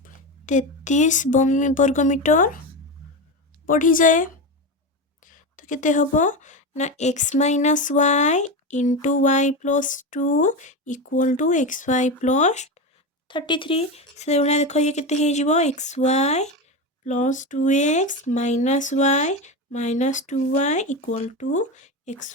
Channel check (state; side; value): normal; both; correlation 0.18